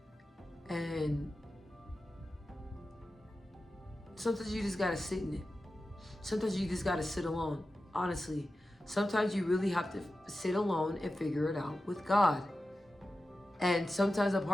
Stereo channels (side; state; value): both; normal; correlation 0.93